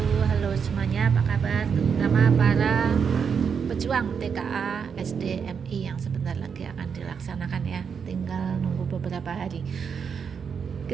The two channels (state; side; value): quieter; left; 6.6 dB